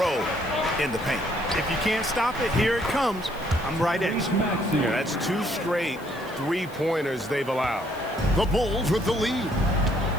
in the paint. If you can't stop it, here it comes. I'm right at you. Yeah, that's 2 straight three-pointers they've allowed. The Bulls with the lead.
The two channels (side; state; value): left; noise; hiss, 23 dB below the sound